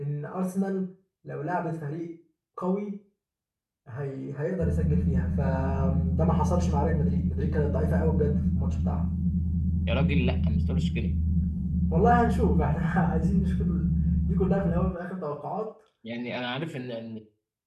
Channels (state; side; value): identical; both; correlation 1.00